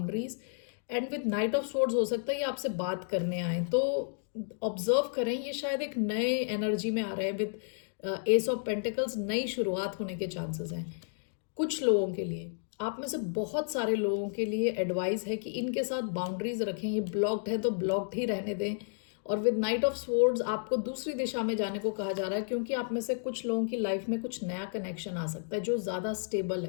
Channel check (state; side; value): silent; right; digital silence